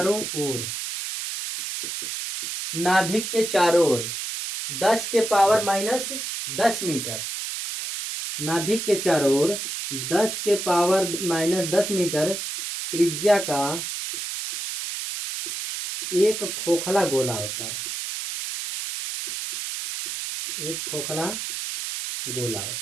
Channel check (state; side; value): noise; right; hiss, 5 dB below the sound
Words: ओर, नाभिक के चारों ओर 10 के पावर माइनस 10 मीटर, नाभिक के चारों ओर 10 के पावर माइनस 10 मीटर त्रिज्या का एक खोखला गोला होता है, एक खोखला गोला